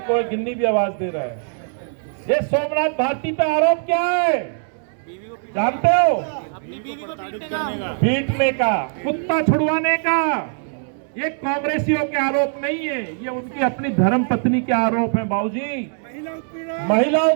है, गिन्नी भी आवाज दे रहा है। ये सोमनाथ भारती पे आरोप क्या है जानते हो? अपनी बीवी को पीटने का, कुत्ता छुड़वाने का। ये कांग्रेसियों के आरोप नहीं है, ये उनकी अपनी धर्म पत्नी के आरोप है बाबूजी। महिला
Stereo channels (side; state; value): left; silent; 65 dB below the other